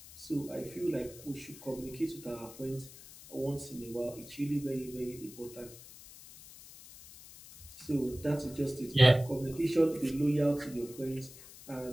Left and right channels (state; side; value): noise; left; hiss, 17 dB below the sound